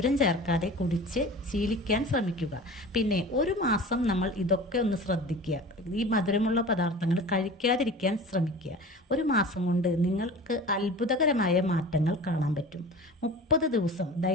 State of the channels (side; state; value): both; normal; correlation 0.38